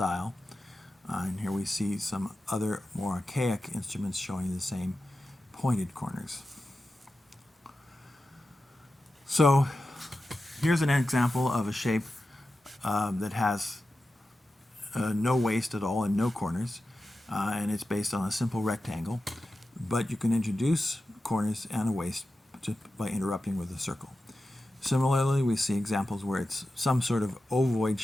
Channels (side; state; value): both; normal; correlation 0.92